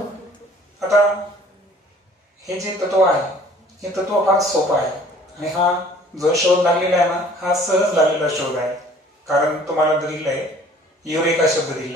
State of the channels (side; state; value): both; normal; correlation 0.53